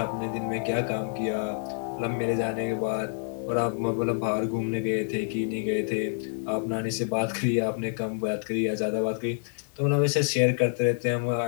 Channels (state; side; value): silent; right; 60 dB below the other